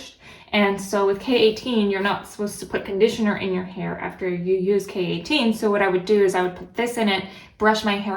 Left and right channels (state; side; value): identical; both; correlation 1.00